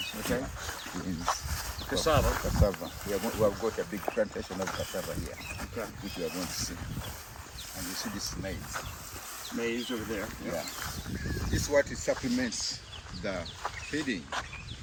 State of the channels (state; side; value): identical; both; correlation 1.00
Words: okay. Beans. Cassava. Cassava. We have got a big plantation of cassava here, Okay. which we are going to see. And you see this maize. Maize over there. Yeah. This is what it supplements the feeding.